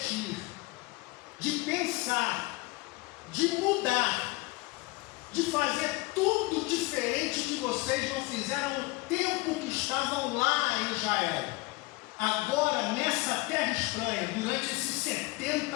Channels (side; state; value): right; quieter; 22.9 dB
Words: de pensar, de mudar, de fazer tudo diferente que vocês não fizeram no tempo que estavam lá em Israel. Agora, nessa terra estranha, durante esses 70